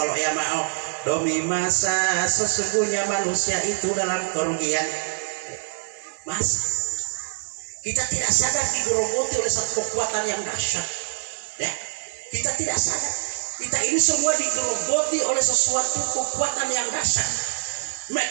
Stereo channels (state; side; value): silent; left; digital silence